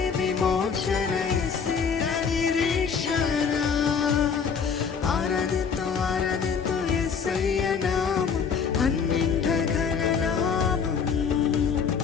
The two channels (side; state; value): right; quieter; 6.3 dB